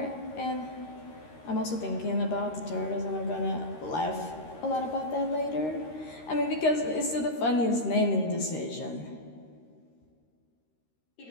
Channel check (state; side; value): late; right; 13 ms